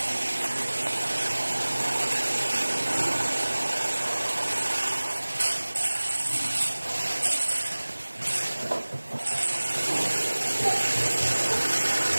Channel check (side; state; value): both; inverted; correlation -1.00